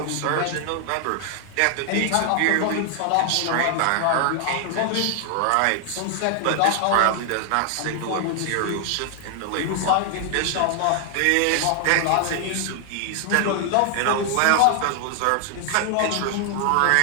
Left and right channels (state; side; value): different; both; correlation 0.00